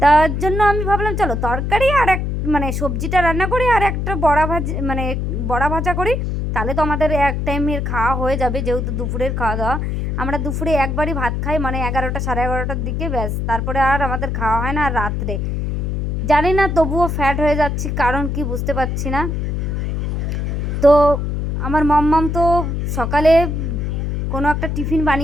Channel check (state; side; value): noise; left; hum, 1 dB below the sound